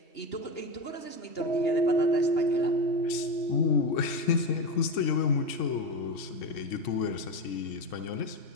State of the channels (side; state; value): right; late; 3.7 ms